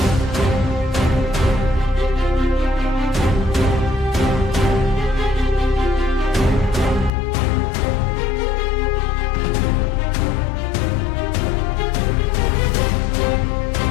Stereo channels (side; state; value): right; drops out; at 7.1 s